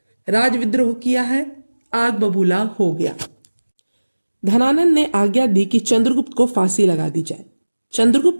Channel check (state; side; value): inverted; both; correlation -1.00